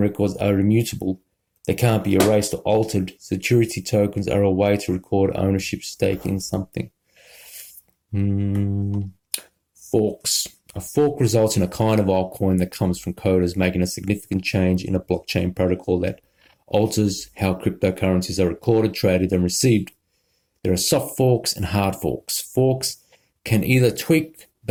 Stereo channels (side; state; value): both; identical; correlation 1.00